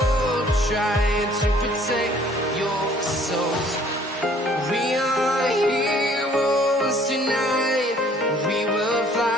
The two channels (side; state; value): both; normal; correlation 0.58